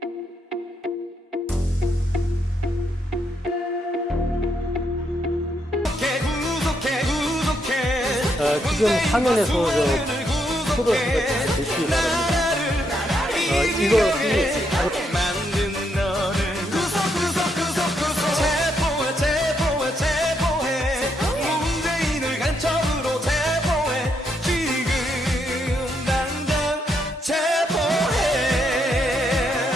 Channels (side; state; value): both; normal; correlation 0.77